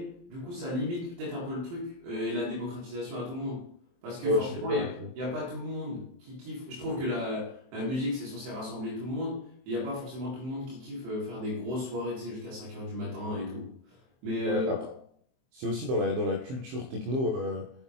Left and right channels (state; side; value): late; left; 23 ms